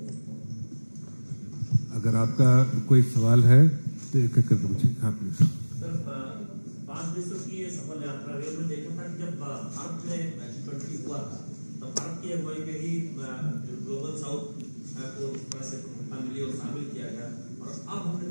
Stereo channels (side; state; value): both; inverted; correlation -1.00